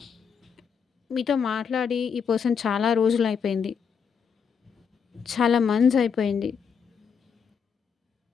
మీతో మాట్లాడి ఈ పర్సన్ చాలా రోజులయిపోయింది. చాలా మంత్స్ అయిపోయింది.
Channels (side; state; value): right; quieter; 6.7 dB